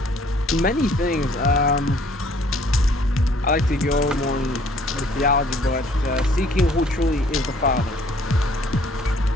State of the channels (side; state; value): both; normal; correlation 0.59